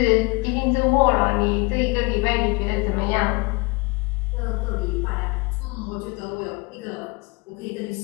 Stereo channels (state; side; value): quieter; right; 27.6 dB